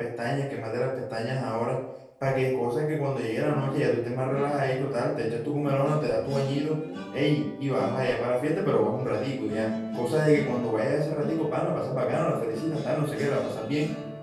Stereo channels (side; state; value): both; identical; correlation 1.00